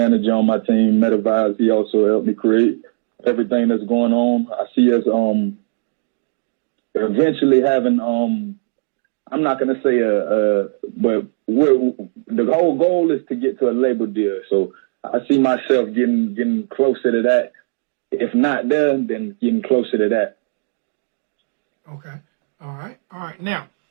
on my team, Metavibes. He also helped me create everything that's going on. I see us eventually having I'm not gonna say but the whole goal is to get to a label deal. So I see myself getting closer to that. If not there, then getting closer to that. Okay. All right. All right. Now,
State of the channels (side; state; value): left; silent; digital silence